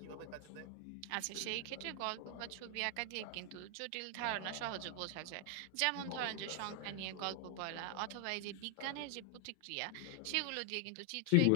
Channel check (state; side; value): different; both; correlation 0.00